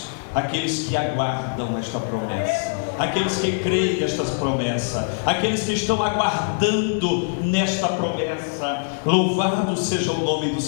aqueles que aguardam esta promessa, aqueles que creem nestas promessas, aqueles que estão aguardando nesta promessa. Louvado seja o nome do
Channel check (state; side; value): silent; right; digital silence